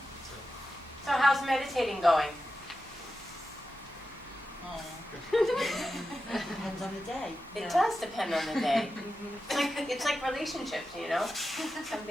So how's meditating going? Depends on the day. It does depend on the day. It's like relationships, you know? Some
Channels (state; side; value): normal; both; correlation 0.91